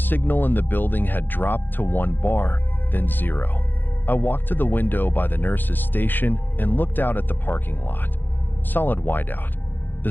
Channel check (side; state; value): right; late; 0.092 ms